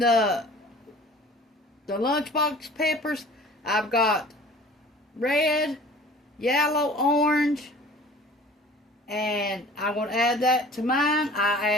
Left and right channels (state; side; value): normal; both; correlation 0.46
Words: lunchbox peppers. I've got red, yellow, orange, and I'm going to add that to mine. I